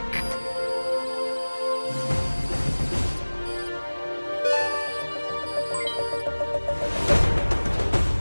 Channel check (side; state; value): both; inverted; correlation -1.00